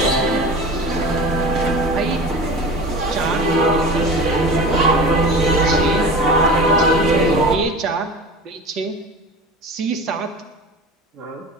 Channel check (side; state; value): both; normal; correlation 0.34